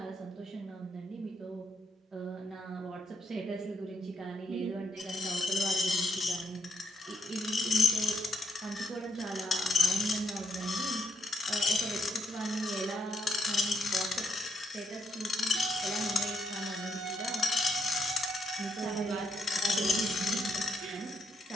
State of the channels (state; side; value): normal; both; correlation 0.75